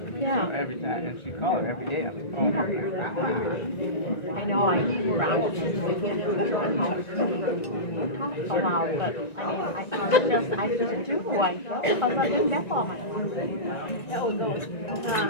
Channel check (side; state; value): right; late; 1.9 ms